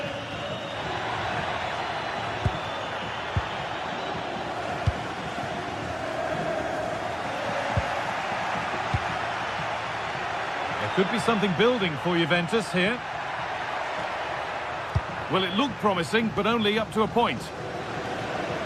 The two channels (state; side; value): identical; both; correlation 1.00